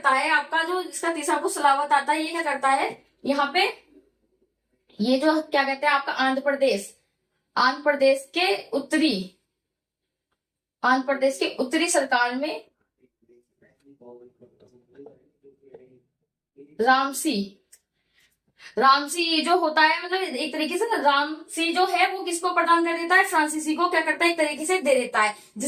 है, आपका जो इसका तीसरा पुत्र सलावत आता है, ये क्या करता है, यहाँ पे ये जो क्या कहते हैं आपका आंध्र प्रदेश के उत्तरी, आंध्र प्रदेश के उत्तरी सरकार में रामसी, रामसी ये जो होता है, मतलब एक तरीके से ना रामसी जो है वो किसको प्रदान कर देता है, फ्रांसीसी को क्या करता है, एक तरीके से दे देता है।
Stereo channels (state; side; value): identical; both; correlation 1.00